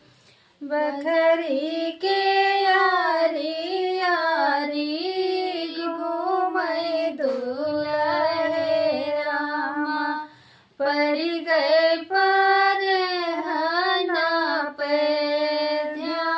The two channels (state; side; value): identical; both; correlation 1.00